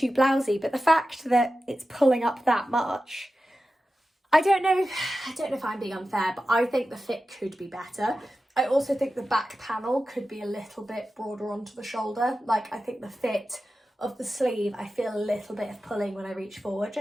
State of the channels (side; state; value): both; normal; correlation 0.93